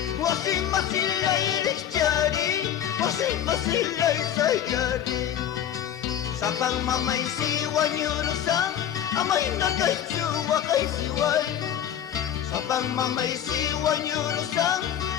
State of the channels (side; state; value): right; quieter; 10.0 dB